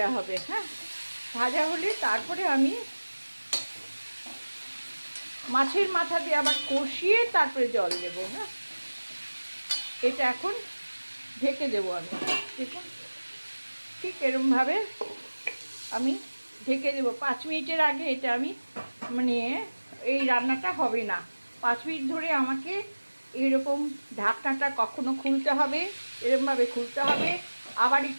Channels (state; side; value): inverted; both; correlation -1.00